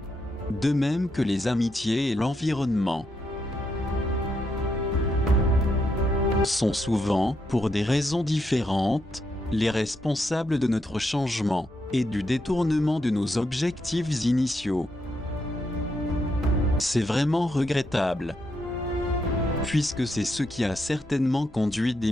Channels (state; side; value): normal; both; correlation 0.80